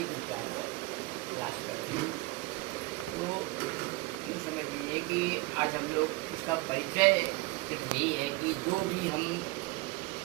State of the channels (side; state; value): left; quieter; 22.4 dB